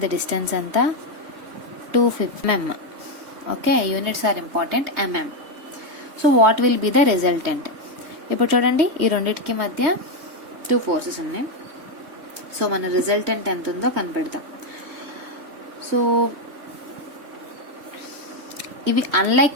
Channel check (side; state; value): left; late; 3.2 ms